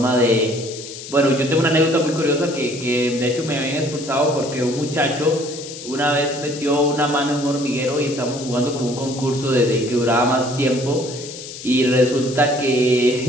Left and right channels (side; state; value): left; noise; hiss, 12 dB below the sound